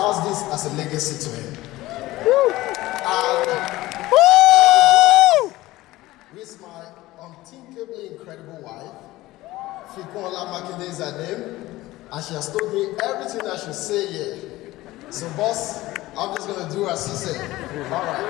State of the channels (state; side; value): quieter; right; 17.8 dB